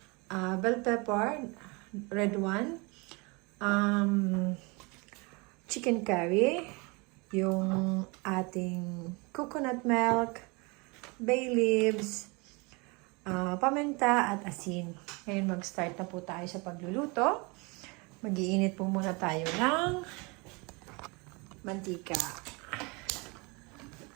bell pepper, red one, chicken curry, yung ating coconut milk, bay leaves, paminta at asin. Ngayon mag-start na po tayo sa pagluluto. Mag-iinit po muna tayo ng mantika.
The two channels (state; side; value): quieter; left; 28.4 dB